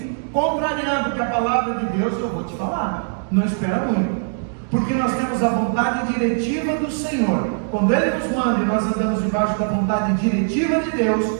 contrariando que a palavra de Deus, eu vou te falar, não espera muito, porque nós temos a vontade diretiva do Senhor. Quando ele nos manda e nós andamos debaixo da vontade diretiva de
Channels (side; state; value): left; silent; digital silence